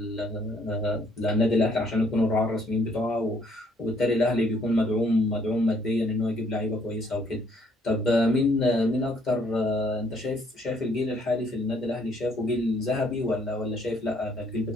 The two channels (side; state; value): both; normal; correlation 0.66